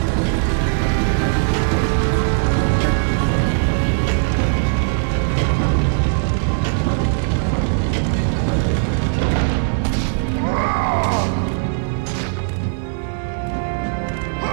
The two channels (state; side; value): silent; left; 66 dB below the other